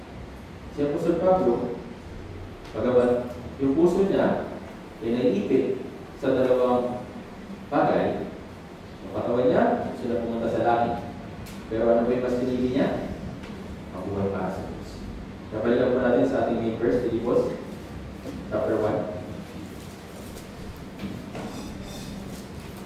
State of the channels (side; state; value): both; identical; correlation 1.00